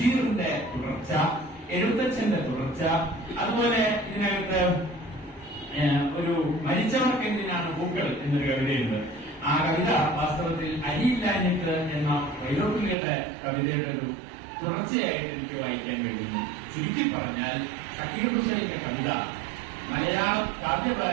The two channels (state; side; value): drops out; left; at 13.0 s